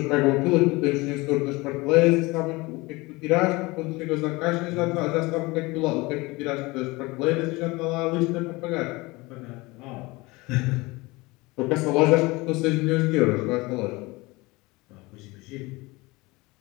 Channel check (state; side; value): quieter; right; 23.1 dB